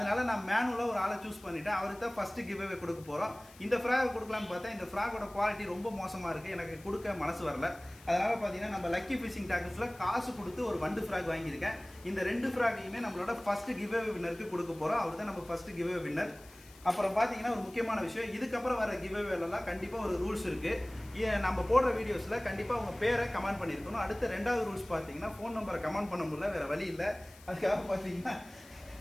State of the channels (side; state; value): left; noise; hiss, 23 dB below the sound